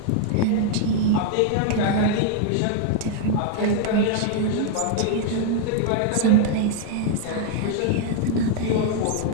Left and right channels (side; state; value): both; different; correlation 0.00